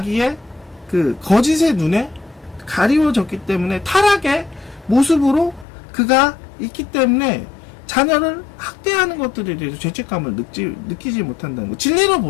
그 거짓의 눈에 가리워졌기 때문에 타락의 모습으로 그가 있기 때문에 자녀를 학대하는 것들에 대해서 죄책감을 느끼지 못한다는 거.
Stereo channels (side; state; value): right; drops out; at 5.7 s